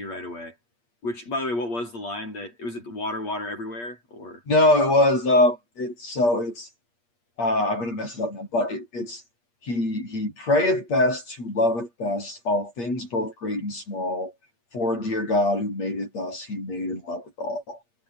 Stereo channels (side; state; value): right; late; 8.5 ms